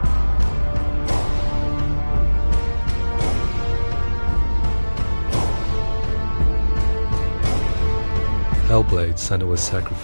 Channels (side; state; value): both; inverted; correlation -1.00